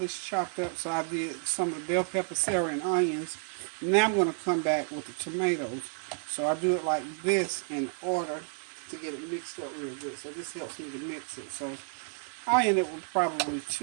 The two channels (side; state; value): left; silent; 57 dB below the other